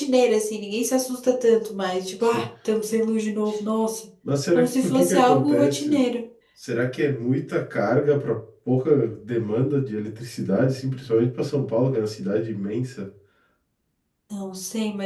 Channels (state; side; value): identical; both; correlation 1.00